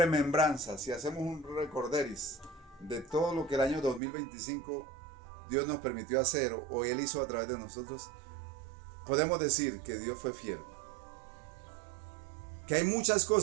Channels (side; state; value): left; drops out; at 4.0 s